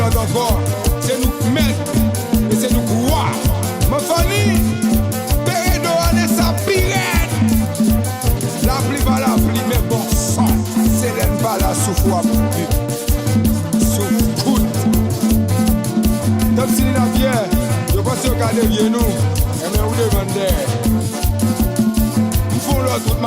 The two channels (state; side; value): identical; both; correlation 1.00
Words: encore. C'est nous mettre et c'est nous croire. Ma famille, Pérédo allez sa pirate. La pluie va la pluie, mais bon sang. C'est l'aine pas la souffle à plus. Souffle. Comme si la pierre, je pense que regardez bien nous. Et bien vous demandez. Ils font l'autre, toute